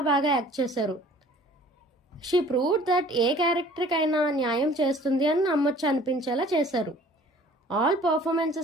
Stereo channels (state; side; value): normal; both; correlation 0.52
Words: యాక్ట్ చేశారు. షీ ప్రూవ్డ్ దట్ ఏ క్యారెక్టర్కైనా న్యాయం చేస్తుంది అని నమ్మొచ్చు అనిపించేలా చేశారు. All